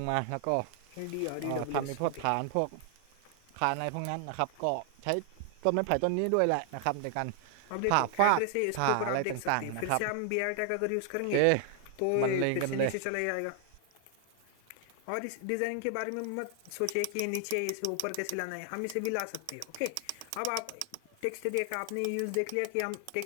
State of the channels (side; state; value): both; different; correlation 0.00